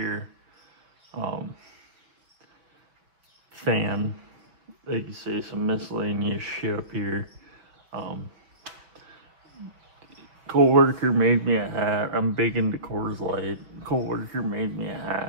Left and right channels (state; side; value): late; left; 5.8 ms